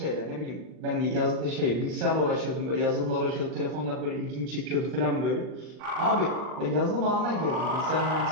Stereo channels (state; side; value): late; left; 40 ms